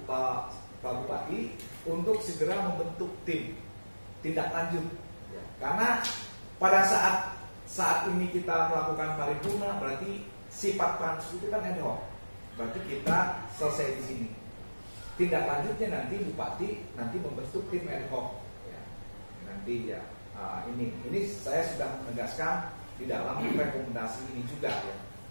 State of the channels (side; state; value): both; inverted; correlation -1.00